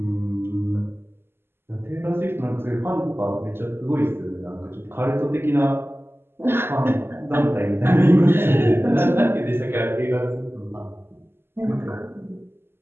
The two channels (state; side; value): late; left; 0.11 ms